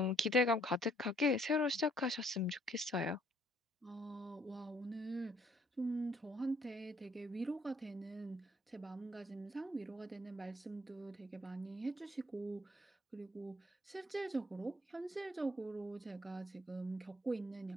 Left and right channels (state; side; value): normal; both; correlation 0.64